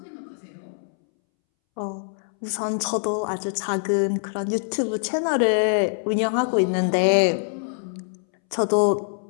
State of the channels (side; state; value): right; silent; 63 dB below the other